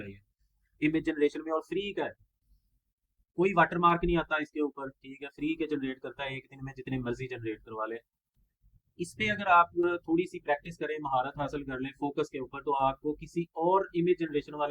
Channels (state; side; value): identical; both; correlation 1.00